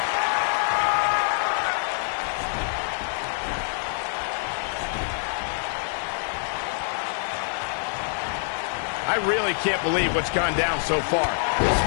I really can't believe what's gone down so far. This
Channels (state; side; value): silent; right; 58 dB below the other